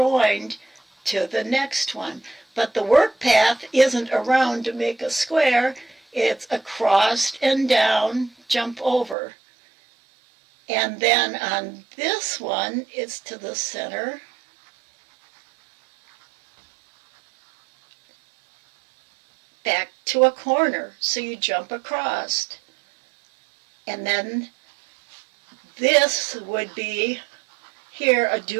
to the next one. But the work path isn't around to make a square, it's across and down, jump over. And then on this one, it's to the center. Back to a corner, so you jump across. And then this would be here a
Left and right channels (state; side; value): drops out; left; at 9.2 s